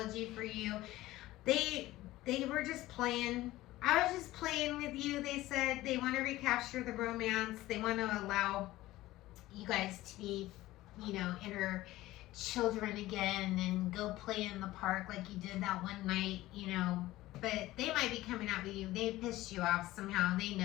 for you. They were just playing. I was just playing with you. They said they want to recapture the romance. They want to allow you guys to be, inner children again and go play in the park like you did that one night, But they might be coming out with you. They pissed you off somehow. They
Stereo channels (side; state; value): right; quieter; 16.8 dB